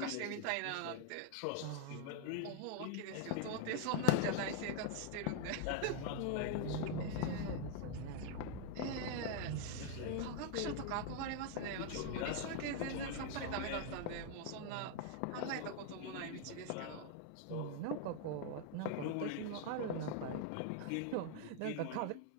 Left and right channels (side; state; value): both; different; correlation 0.00